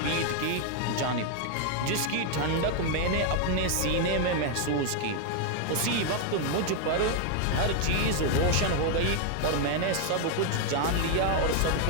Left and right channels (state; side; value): different; both; correlation 0.00